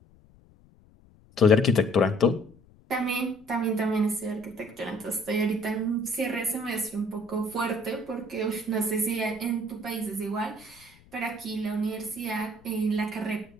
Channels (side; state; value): left; noise; rumble, 27 dB below the sound